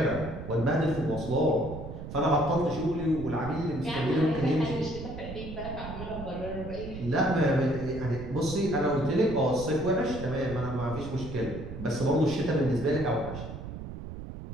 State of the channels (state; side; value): noise; right; rumble, 10 dB below the sound